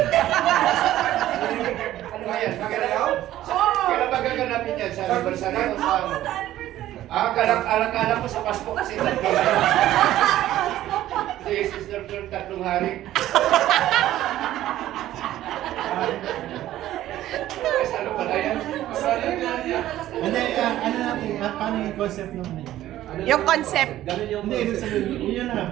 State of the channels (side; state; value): left; quieter; 13.8 dB